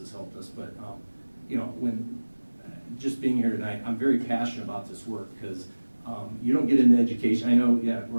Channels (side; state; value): both; inverted; correlation -1.00